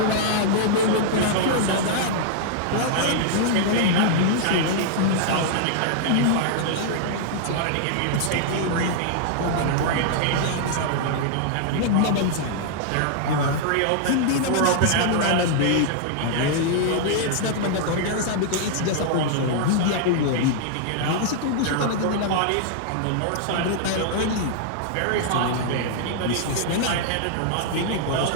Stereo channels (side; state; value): both; different; correlation -0.01